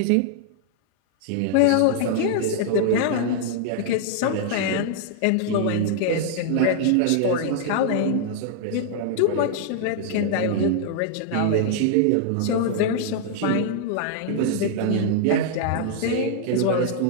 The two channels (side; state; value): both; different; correlation -0.01